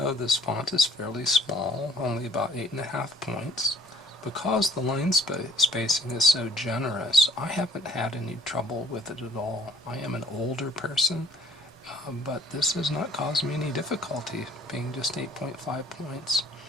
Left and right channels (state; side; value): normal; both; correlation 0.56